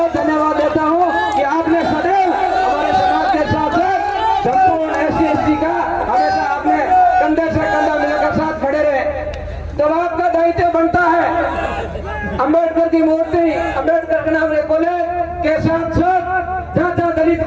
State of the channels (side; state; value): both; identical; correlation 1.00